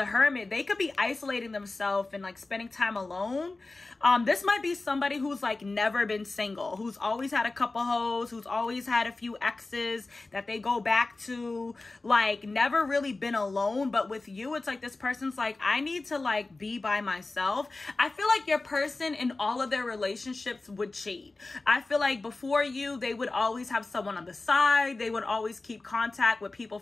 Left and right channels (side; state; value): right; quieter; 3.3 dB